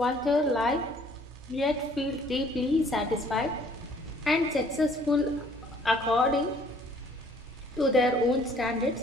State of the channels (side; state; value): both; normal; correlation 0.58